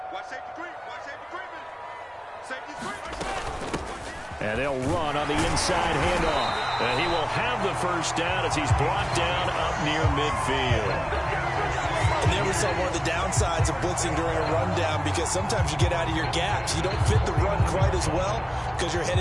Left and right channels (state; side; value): identical; both; correlation 1.00